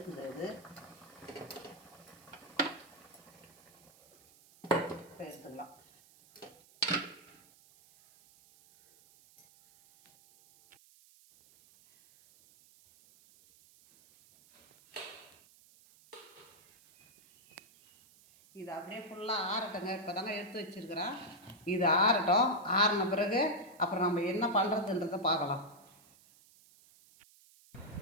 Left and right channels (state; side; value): noise; right; hiss, 26 dB below the sound